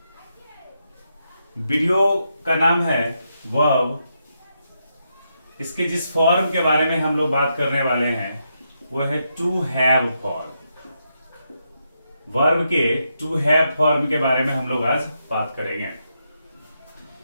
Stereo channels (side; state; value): both; inverted; correlation -0.82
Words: वीडियो का नाम है वर्ब। इसके जिस फॉर्म के बारे में हम लोग बात करने वाले हैं वो है टू हैव फॉर्म। वर्ब के टू हैव फॉर्म के बारे में हम लोग आज बात करेंगे।